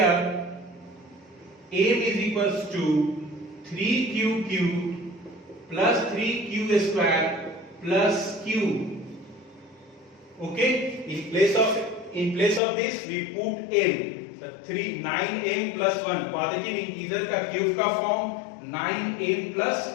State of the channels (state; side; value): drops out; right; at 12.6 s